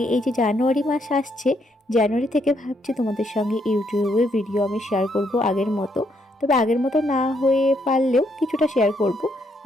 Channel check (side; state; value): both; normal; correlation 0.74